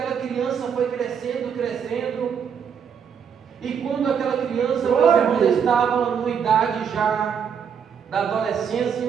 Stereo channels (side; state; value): left; quieter; 7.3 dB